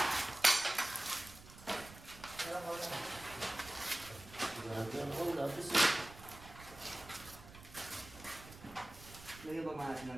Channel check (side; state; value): right; noise; rumble, 17 dB below the sound